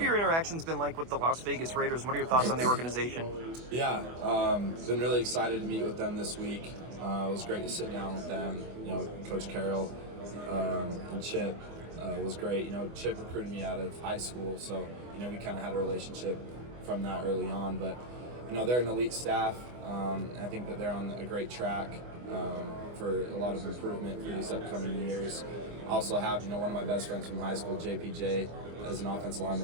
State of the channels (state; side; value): late; left; 24 ms